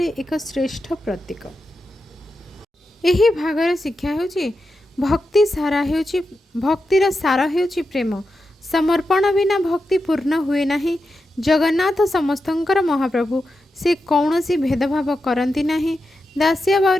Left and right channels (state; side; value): normal; both; correlation 0.89